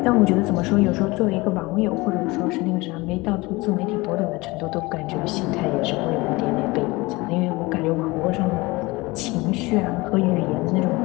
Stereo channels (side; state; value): right; quieter; 22.7 dB